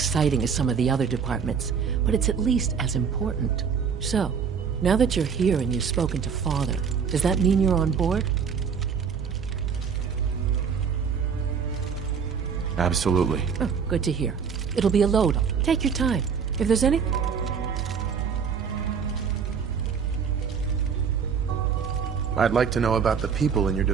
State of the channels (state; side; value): quieter; left; 6.6 dB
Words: as some of the other departments, but it's at least as important. So, now that you're here and you've spoken to Father, does that mean you're on board? Absolutely. Oh, good to hear. It'll be a load. Take your time. If there's any... I'd like to know about the people in your